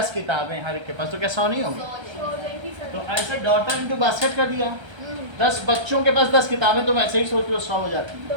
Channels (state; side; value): late; left; 1.3 ms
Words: किताबें, हर एक के पास, तो क्या 100 नहीं होगी? तो ऐसे डॉटर इनटू बास्केट कर दिया। 10 बच्चों के पास 10 किताबें, तुम ऐसे ही सोच लो 100 हो जाती है।